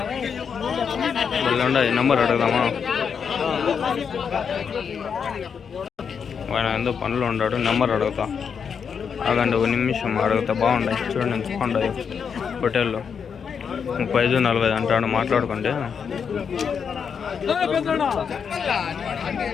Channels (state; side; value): quieter; right; 6.7 dB